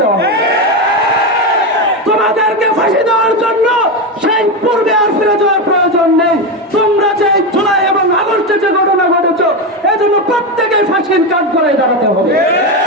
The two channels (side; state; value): both; normal; correlation 0.13